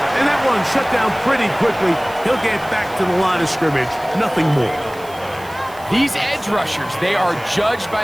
And that one shut down pretty quickly. He'll get back to the line of scrimmage. Nothing more. These edge rushers, they are judged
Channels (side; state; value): right; noise; hiss, 21 dB below the sound